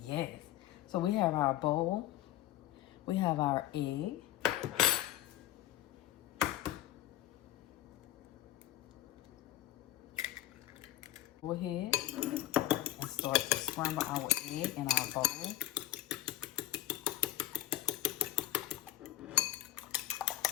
Yes. So we have our bowl. We have our egg. Go ahead and start to scramble our egg in our bowl.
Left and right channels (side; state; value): right; quieter; 13.7 dB